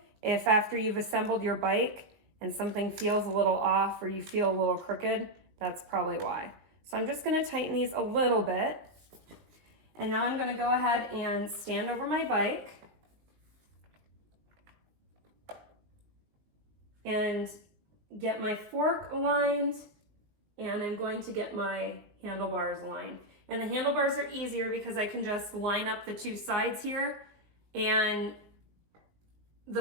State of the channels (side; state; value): left; late; 19 ms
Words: if after you've assembled your bike and something feels a little off or you feel a little crooked, that's probably why. So I'm just gonna tighten these a little bit. And now I'm gonna go ahead and stand over my bike and get my fork aligned, and I'm going to get my handlebars aligned. And the handlebars are easier because I can just line up the two sides here, and